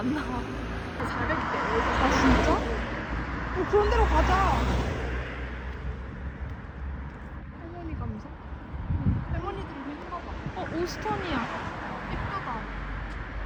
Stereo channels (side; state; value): both; identical; correlation 1.00